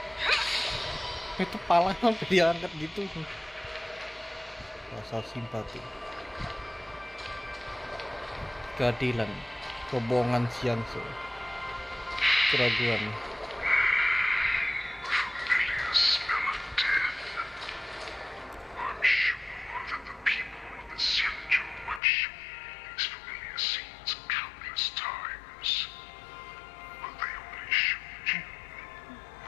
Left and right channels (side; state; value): right; drops out; at 22.0 s